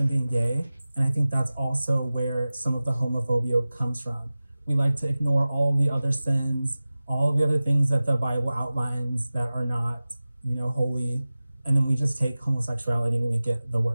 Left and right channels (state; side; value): inverted; both; correlation -0.97